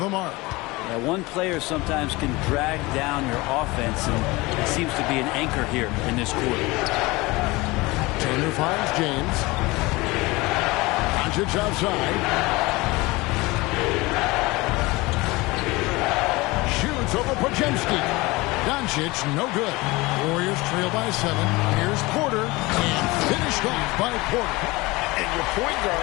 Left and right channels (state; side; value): quieter; right; 22.4 dB